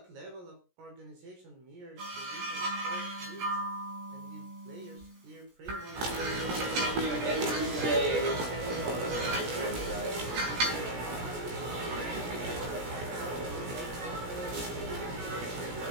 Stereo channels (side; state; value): left; late; 17 ms